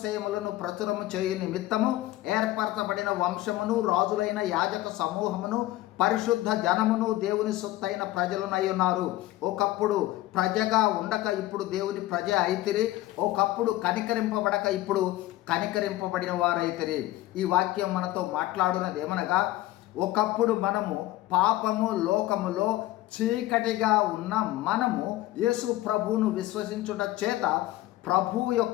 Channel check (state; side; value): quieter; right; 16.5 dB